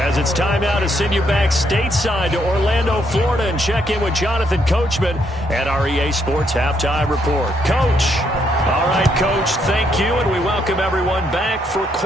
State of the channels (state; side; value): normal; both; correlation 0.74